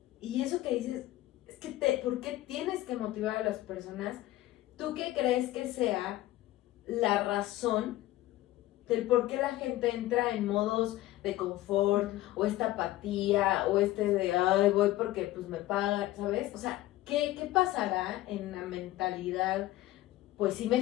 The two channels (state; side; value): quieter; right; 16.1 dB